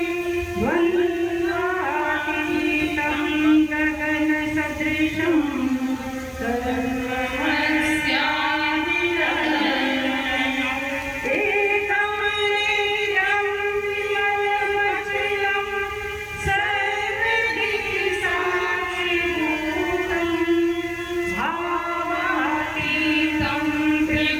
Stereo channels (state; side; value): identical; both; correlation 1.00